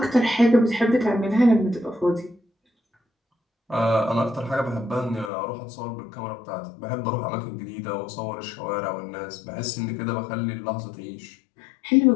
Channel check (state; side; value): drops out; right; at 5.3 s